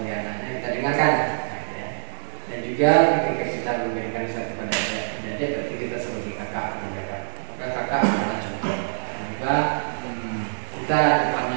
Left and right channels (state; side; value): silent; left; digital silence